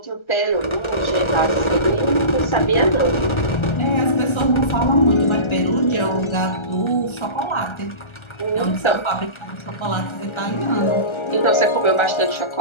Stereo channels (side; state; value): right; late; 1.3 ms